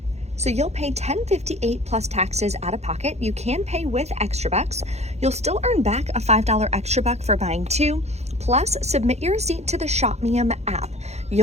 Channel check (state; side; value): late; left; 0.31 ms